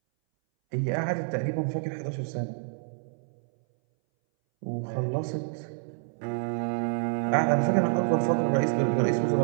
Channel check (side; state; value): left; silent; 59 dB below the other